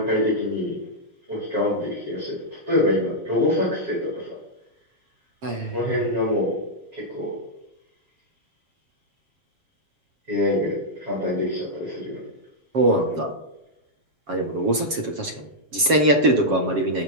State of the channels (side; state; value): left; late; 7.3 ms